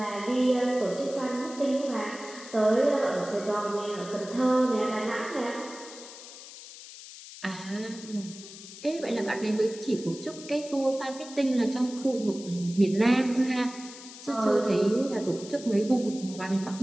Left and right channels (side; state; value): left; noise; hiss, 15 dB below the sound